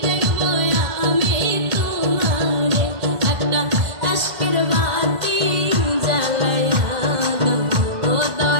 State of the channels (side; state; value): left; late; 2.1 ms